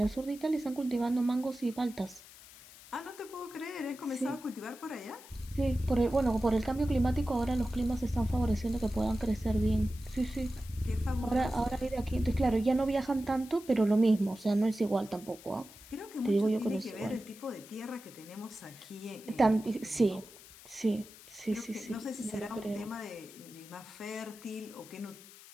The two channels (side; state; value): left; noise; hiss, 19 dB below the sound